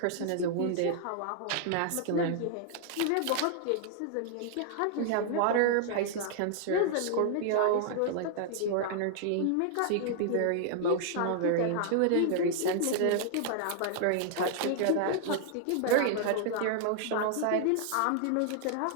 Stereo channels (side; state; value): both; different; correlation -0.01